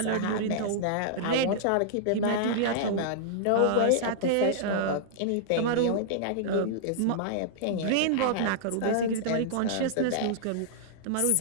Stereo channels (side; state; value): both; different; correlation -0.02